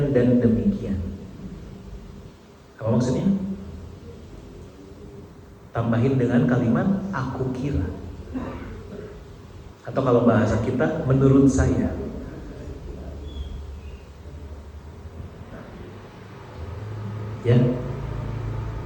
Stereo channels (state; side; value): identical; both; correlation 1.00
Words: dan demikian. Apa maksudnya? Tambahin dengan kalimat aku kira. Atau kalau bahasa kita, menurut saya. Ya.